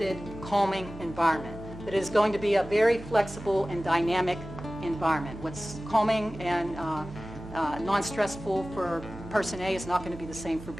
calming environment. That it is going to be a very flexible and dynamic environment. What's calming and non-stressful for person A is not going to be the same for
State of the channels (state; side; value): noise; right; hum, 14 dB below the sound